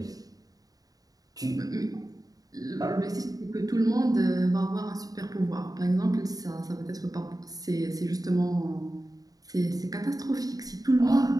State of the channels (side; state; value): left; late; 0.18 ms